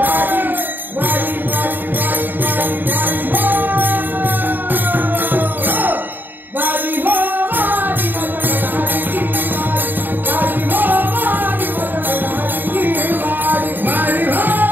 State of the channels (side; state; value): left; late; 0.091 ms